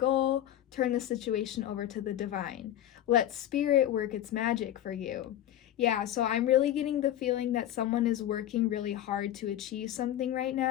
turn the situation over to the divine. Let spirit work its magic for you. Yeah, so I'm really getting the feeling that someone is working really hard to achieve something right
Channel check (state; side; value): quieter; right; 12.0 dB